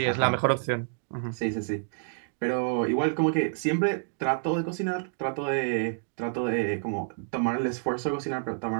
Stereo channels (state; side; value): silent; left; digital silence